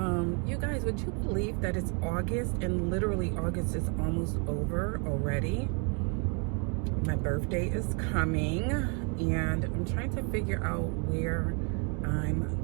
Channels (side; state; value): left; quieter; 36.7 dB